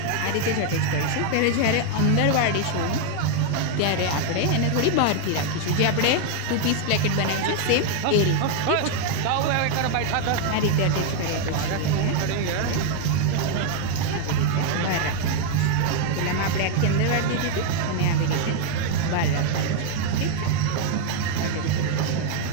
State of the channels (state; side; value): different; both; correlation 0.00